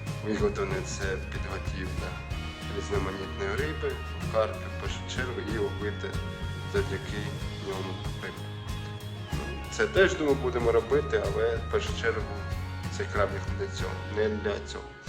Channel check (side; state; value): both; identical; correlation 1.00